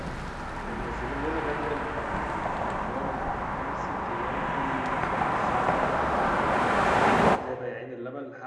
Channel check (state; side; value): identical; both; correlation 1.00